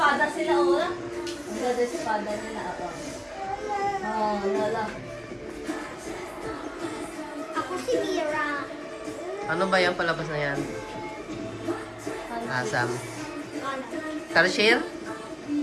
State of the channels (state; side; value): identical; both; correlation 1.00